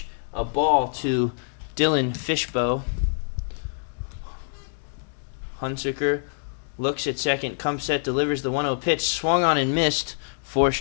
a ball to Dylan Fishbow. Hunsicker looks at second, comes set, delivers the 1-0 pitch, swung on and missed for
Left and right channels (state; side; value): silent; right; digital silence